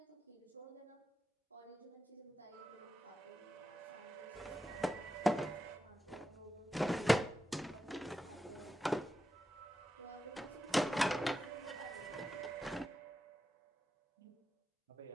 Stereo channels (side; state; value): both; normal; correlation 0.90